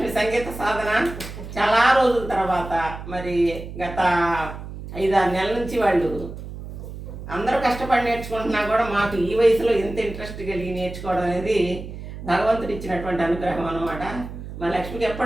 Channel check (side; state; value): right; noise; hum, 11 dB below the sound